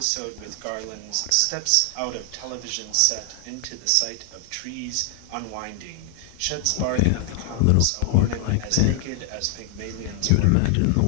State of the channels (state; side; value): different; both; correlation 0.00